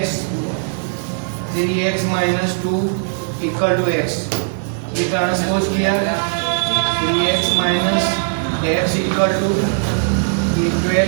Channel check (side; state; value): left; silent; digital silence